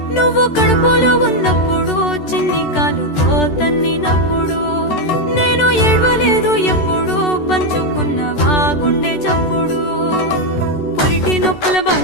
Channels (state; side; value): late; right; 13 ms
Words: నువ్వు కడుపులో ఉన్నప్పుడు చిన్ని కాలుతో తన్నినప్పుడు నేను ఏడవలేదు ఎప్పుడు పంచుకున్నవా గుండె చప్పుడు పురిటి నొప్పుల